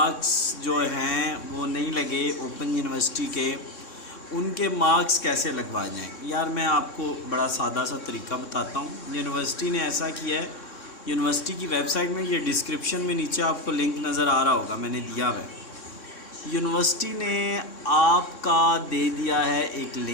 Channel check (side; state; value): right; late; 3.6 ms